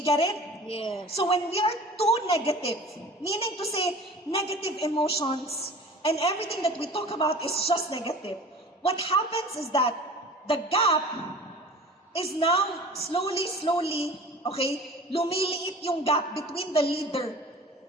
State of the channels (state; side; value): normal; both; correlation 0.41